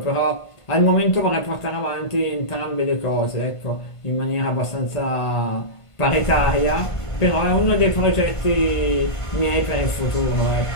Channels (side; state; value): right; late; 1.5 ms